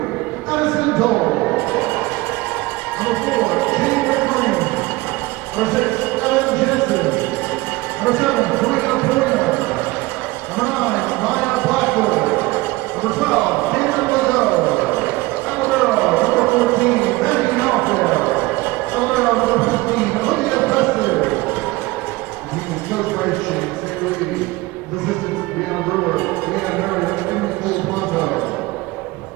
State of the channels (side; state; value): left; quieter; 20.9 dB